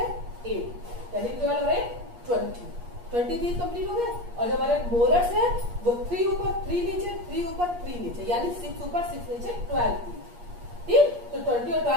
8, यानी 12 और 8 20 टीथ कंप्लीट हो गए। और जो हमारे मोलर्स है वो 3 ऊपर 3 नीचे, 3 ऊपर 3 नीचे, यानी 6 ऊपर 6 नीचे 12 टीथ, ठीक। तो 20 और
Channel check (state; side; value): late; left; 8.4 ms